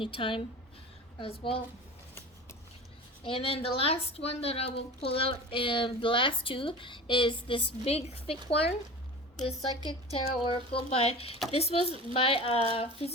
as well. And then the last one that I will pull out, the last two, is this big thick one. The Psychic Tarot Oracle this was by a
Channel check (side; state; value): both; normal; correlation 0.34